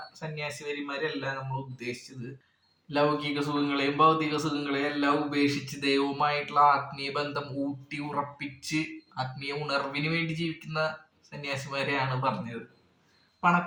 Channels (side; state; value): both; identical; correlation 1.00